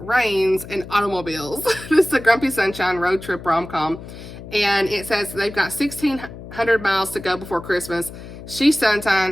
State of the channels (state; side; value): noise; left; hum, 14 dB below the sound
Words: and Automobiles. This is a Grumpy Sunshine road trip rom-com. And it says they've got 1,600 miles to go before Christmas. She's